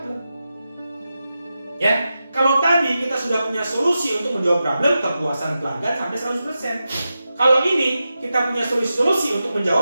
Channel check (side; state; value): both; inverted; correlation -0.91